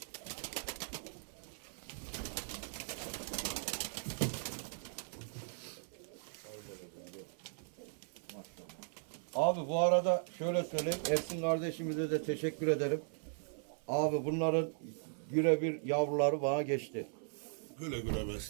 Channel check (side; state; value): left; silent; 52 dB below the other